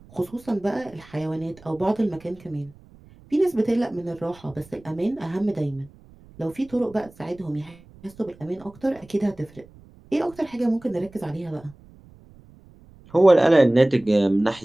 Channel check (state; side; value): noise; right; rumble, 24 dB below the sound